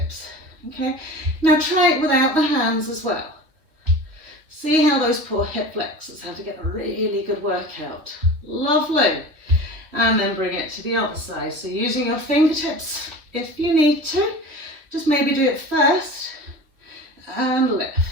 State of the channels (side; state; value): left; late; 3.2 ms